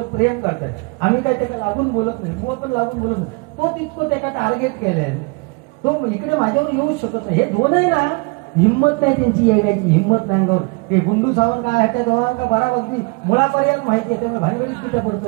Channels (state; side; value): quieter; left; 29.7 dB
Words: प्रेम करताय. आम्ही काय त्याला लागून बोलत नाही. मुळ पण लागून बोलत नाही. तो तितकं त्याला टार्गेट केलंय. तो इकडे माझ्यावर येऊच शकत नाही. हे दोनही ना हिंमत नाही त्यांची यायची. हिंमत नाही अंगावर. ते गुंडू सावंत काय त्या दोघांना बराबरती मुळापर्यंत माहिती आहे. त्यामुळे भानगडीत तिथे